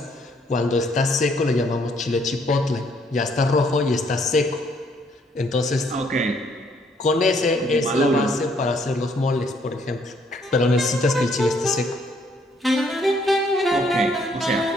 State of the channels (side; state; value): both; normal; correlation 0.67